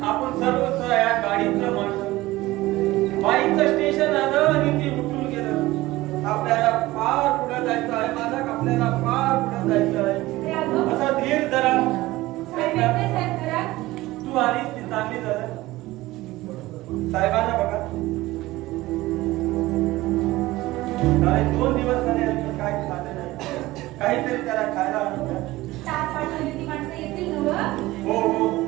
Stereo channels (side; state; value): left; quieter; 18.3 dB